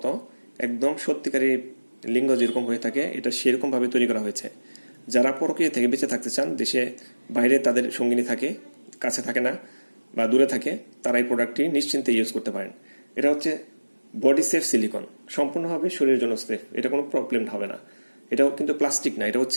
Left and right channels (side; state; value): both; inverted; correlation -1.00